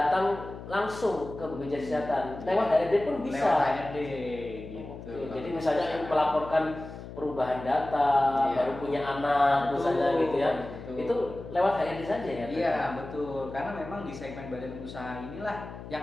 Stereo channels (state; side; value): noise; left; hum, 12 dB below the sound